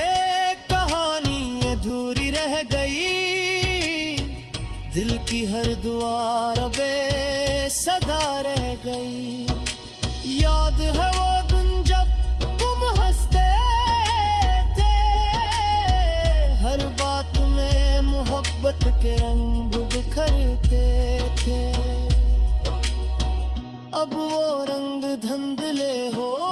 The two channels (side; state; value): both; identical; correlation 1.00